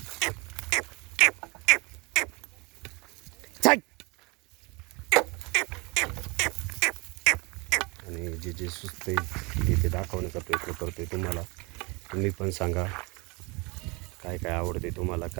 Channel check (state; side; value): quieter; left; 27.7 dB